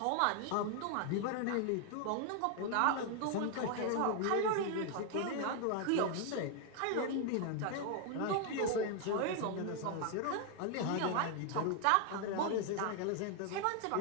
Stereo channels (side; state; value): both; different; correlation 0.00